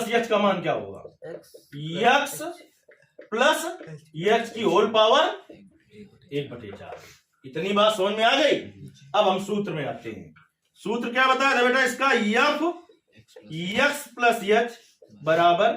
एच का मान क्या होगा? एक्स प्लस एच की होल पावर 1/4। इतनी बात समझ में आ गई? अब हम सूत्र में आते हैं। सूत्र क्या बताया था बेटा इसका? एफ एक्स प्लस एच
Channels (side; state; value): both; identical; correlation 1.00